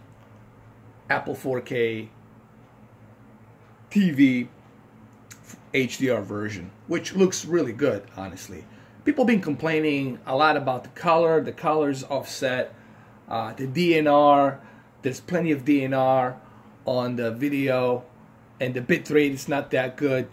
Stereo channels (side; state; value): both; identical; correlation 1.00